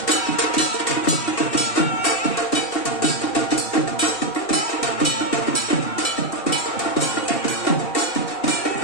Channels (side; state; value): right; late; 2.7 ms